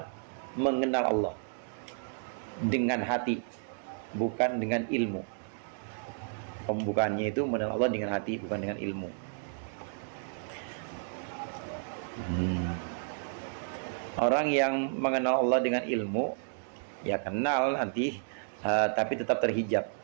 mengenal Allah dengan hati, bukan dengan ilmu. Pembukaannya itu mengenal Allah dengan hati, bukan dengan ilmu. Orang yang mengenal Allah dengan ilmu, ya kenal nanti, tapi tetap terhijab.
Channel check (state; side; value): silent; left; digital silence